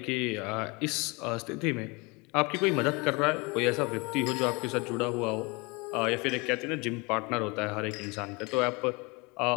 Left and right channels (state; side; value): quieter; right; 27.4 dB